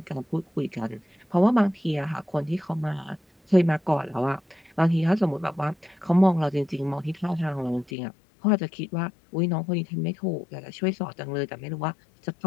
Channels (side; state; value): right; drops out; at 7.9 s